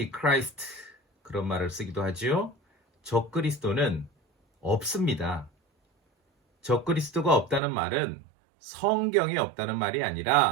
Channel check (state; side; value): drops out; left; at 7.6 s